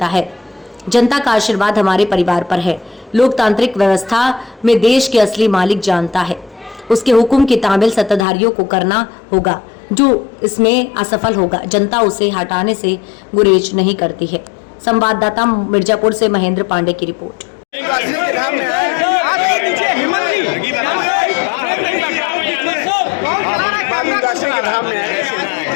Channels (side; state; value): right; drops out; at 8.2 s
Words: है। जनता का आशीर्वाद हमारे परिवार पर है। लोकतांत्रिक व्यवस्था में देश के असली मालिक जानता है। उसके हुक्म की तामील सत्ताधारियों को करना होगा। जो इसमें असफल होगा, जनता उसे हटाने से गुरेज नहीं करती है। संवाददाता मिर्जापुर से महेंद्र पांडे की रिपोर्ट।